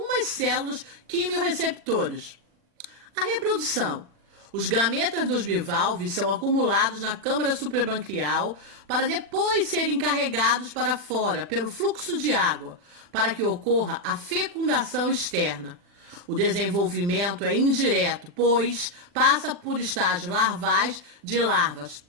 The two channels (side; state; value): left; late; 40 ms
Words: células quimiorreceptoras. A reprodução. Os gametas dos bivalves são acumulados na câmara suprabranquial para depois serem carregados para fora pelo fluxo de água, para que ocorra a fecundação externa. O desenvolvimento é indireto, pois passa por estágios larvais de larvas